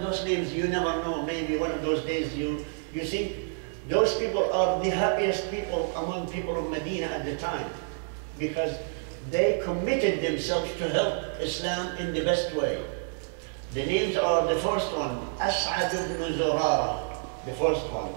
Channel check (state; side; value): silent; left; 59 dB below the other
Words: those names, you never know, maybe one of those days you think those people are the happiest people among people of Medina at the time, because they committed themselves to help Islam in the best way. The names are, the first one, S.A.W, the first one,